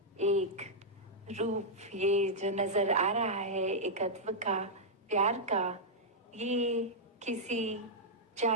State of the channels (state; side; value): normal; both; correlation -0.07